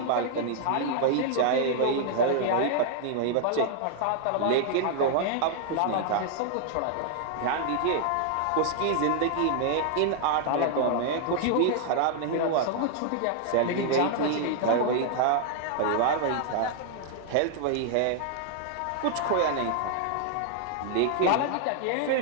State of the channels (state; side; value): different; both; correlation 0.00